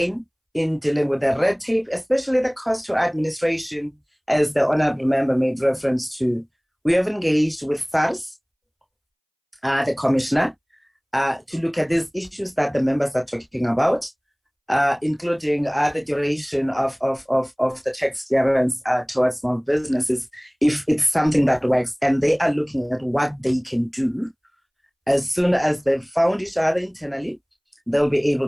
in dealing with the red tape, especially the cost to administration, as the honorable member made reference to, we have engaged with SARS, the commissioner, to look at these issues that the members are talking about, including the duration of the tax clearance towards small businesses, if it's something that works, and they are looking at what they can do. As soon as they've found each other internally, they'll be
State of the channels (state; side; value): identical; both; correlation 1.00